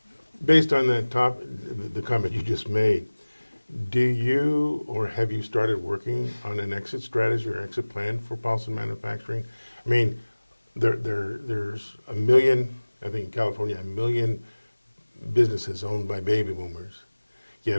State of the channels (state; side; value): inverted; both; correlation -1.00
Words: Based on that the comment you just made, do you or have you started working on an exit strategy or exit plan for Paulson Manufacturing? I mean, there's a million, I think in California, a million businesses owned by baby boomers,